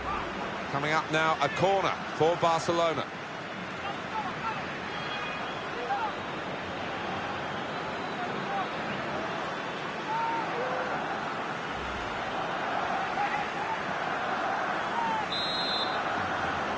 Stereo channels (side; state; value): both; identical; correlation 1.00